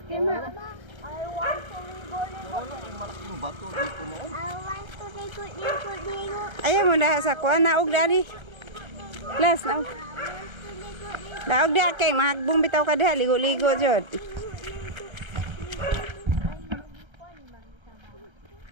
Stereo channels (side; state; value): left; late; 1.3 ms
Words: Kima. I want to ligo. Ayaw mo na sa kuha. Naog dali. Las, naog. Naog di kay mahagbong bitaw ka diha. Ligo-ligo dyan.